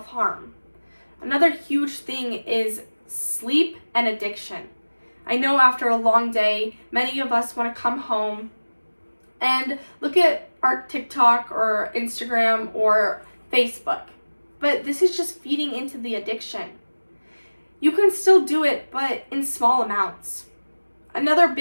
Another huge thing is sleep and addiction. I know after a long day, many of us want to come home and look at our TikTok or Instagram or Facebook, but this is just feeding into the addiction. You can still do it, but in small amounts. Another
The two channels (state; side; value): inverted; both; correlation -1.00